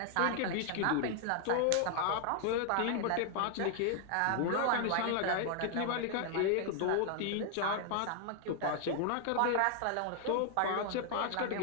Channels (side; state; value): both; different; correlation 0.00